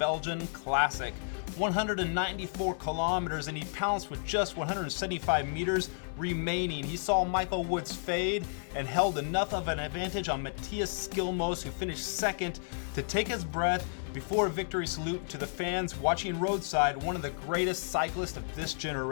Classic. 194 kilometers, and he pounced with just 175 meters remaining. He saw Michael Woods fade and held enough of an advantage on Matthias Skjelmose, who finished second, to take his breath before a victory salute to the fans watching roadside, one of the greatest cyclists of this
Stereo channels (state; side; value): silent; right; digital silence